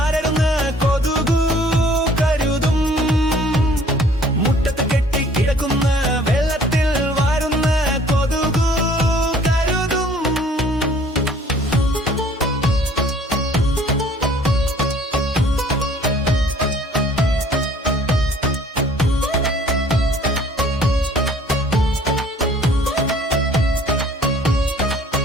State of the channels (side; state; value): both; normal; correlation 0.55